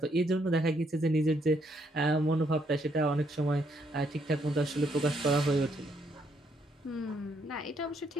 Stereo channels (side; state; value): both; normal; correlation 0.72